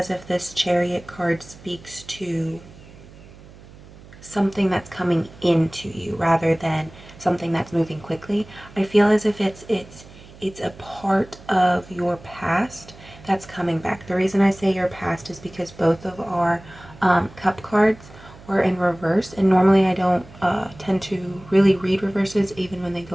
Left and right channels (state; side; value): noise; right; hum, 20 dB below the sound